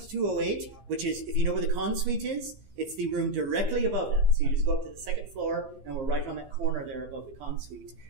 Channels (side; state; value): left; late; 15 ms